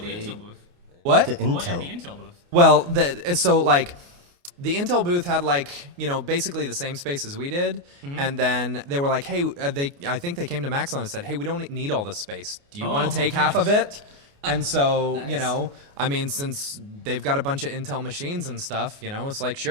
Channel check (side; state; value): left; late; 29 ms